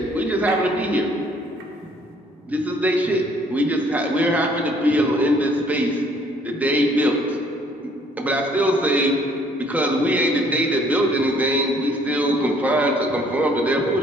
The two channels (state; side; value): normal; both; correlation 0.61